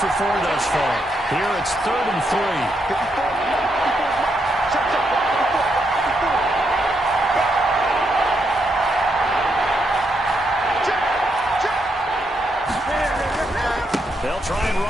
4 thus far. Here it's 3rd and 3. They'll try and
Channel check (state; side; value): normal; both; correlation 0.79